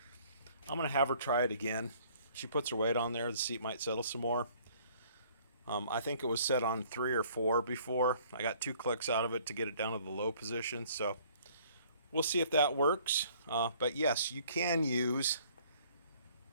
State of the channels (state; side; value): inverted; both; correlation -0.58